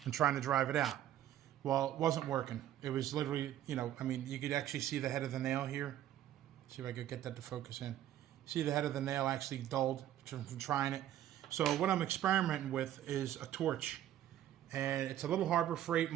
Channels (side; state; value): left; quieter; 12.0 dB